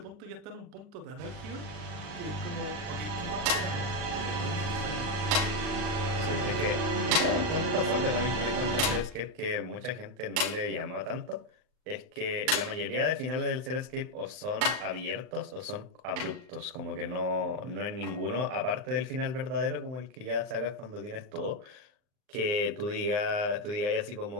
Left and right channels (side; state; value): left; late; 39 ms